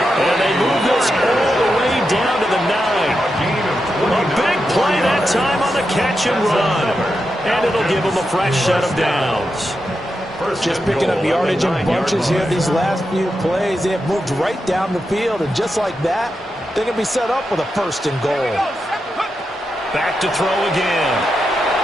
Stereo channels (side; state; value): both; normal; correlation 0.87